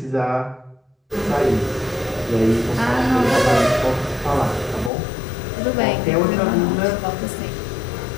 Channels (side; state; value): right; drops out; at 4.9 s